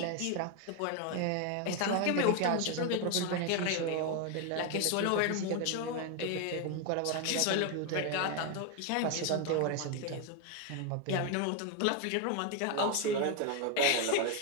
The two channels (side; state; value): both; different; correlation 0.01